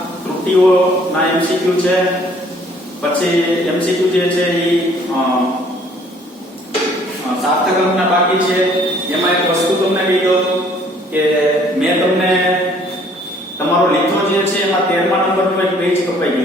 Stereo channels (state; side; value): normal; both; correlation 0.59